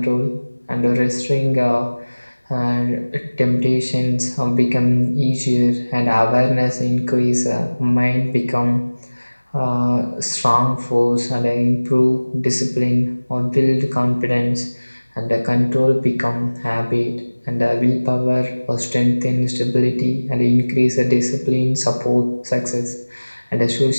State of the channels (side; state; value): both; inverted; correlation -1.00